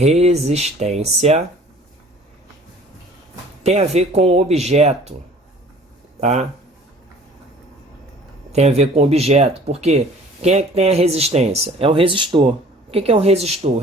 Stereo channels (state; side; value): normal; both; correlation 0.51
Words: tem a ver com objeto, tá? Tem a ver com objeto, porque quem é que tem a resistência? É o resistor. O que é um resistor? O